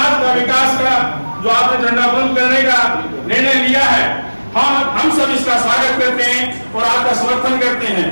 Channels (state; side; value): inverted; both; correlation -1.00